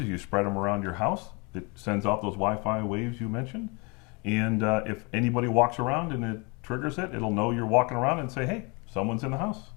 you spread them around your house. It sends out those Wi-Fi waves you mentioned. And if anybody walks around and it triggers it, it'll know you're walking around and say, hey, someone's in the house.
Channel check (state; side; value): quieter; right; 30.2 dB